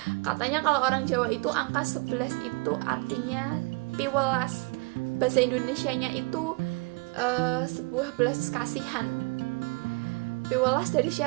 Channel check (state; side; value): quieter; left; 29.4 dB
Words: katanya kalau orang Jawa itu angka 11 itu artinya piwelas, bahasa Indonesianya itu sebuah belas kasihan. Piwelas dari